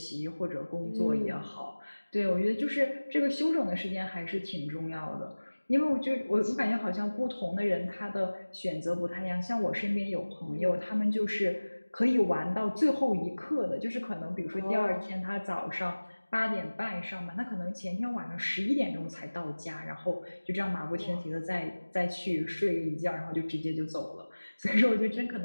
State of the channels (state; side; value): inverted; both; correlation -1.00